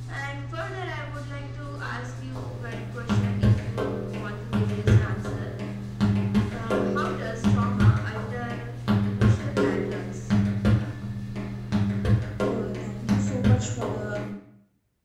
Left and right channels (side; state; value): both; identical; correlation 1.00